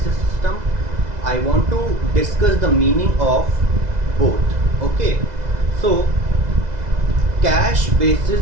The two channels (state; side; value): late; left; 2.0 ms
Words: system, I want to discuss the meaning of both. Okay, so cash